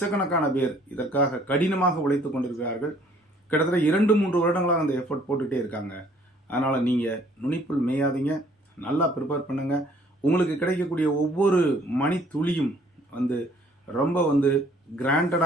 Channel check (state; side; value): normal; both; correlation 0.60